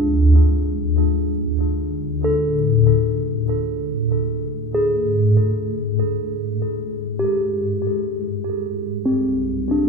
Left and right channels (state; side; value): normal; both; correlation 0.43